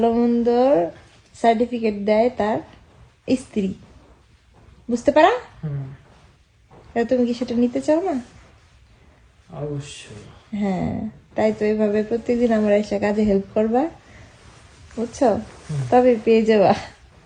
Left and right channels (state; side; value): identical; both; correlation 1.00